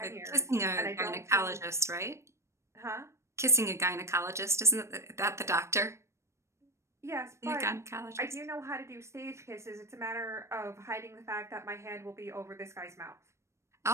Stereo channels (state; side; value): late; left; 0.13 ms